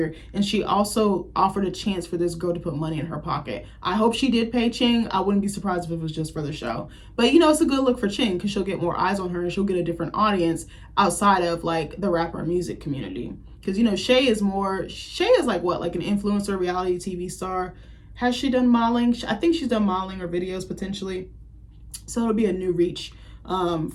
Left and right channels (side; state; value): both; identical; correlation 1.00